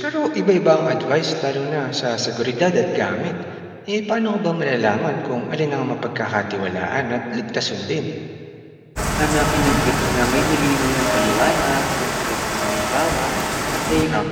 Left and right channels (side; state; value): both; identical; correlation 1.00